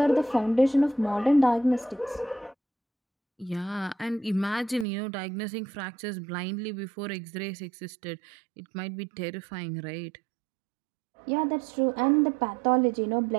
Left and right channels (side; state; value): left; drops out; at 4.9 s